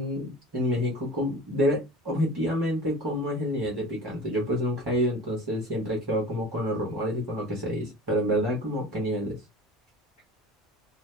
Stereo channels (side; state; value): both; normal; correlation 0.38